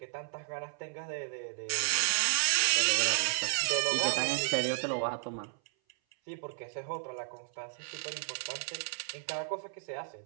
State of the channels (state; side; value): silent; left; 56 dB below the other